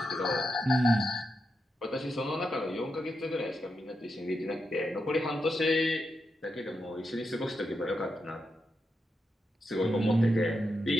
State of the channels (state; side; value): normal; both; correlation 0.86